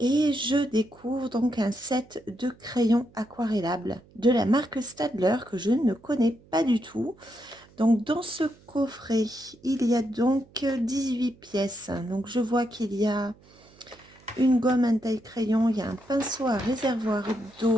je découvre donc un set de crayons aquarellables de la marque Stadler que je ne connais pas du tout. Donc dans ce coffret, il y a donc 18 pièces. Donc je vois qu'il y a une gomme, un taille-crayon, il y a un pinceau à réservoir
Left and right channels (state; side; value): noise; right; hum, 27 dB below the sound